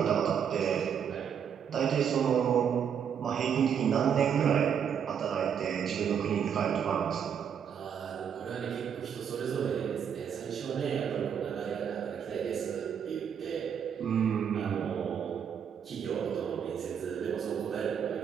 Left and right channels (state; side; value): quieter; left; 7.9 dB